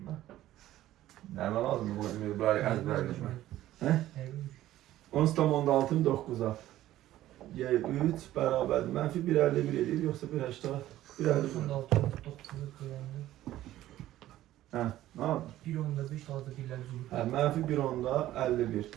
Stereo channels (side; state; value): left; quieter; 14.2 dB